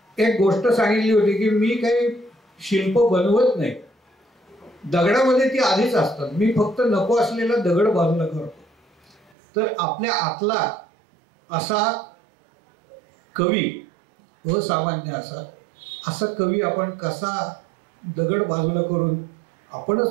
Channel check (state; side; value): drops out; left; at 9.3 s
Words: एक गोष्ट सांगितली होती की मी काही शिल्प बनवत नाही, दगडामध्ये ती आधीच असतात, मी फक्त नको असलेला दगड बाजूला करतो. तर आपल्या आतला असा कवी, असामान्य असा कवी आपण कसा दगड बाजूला करून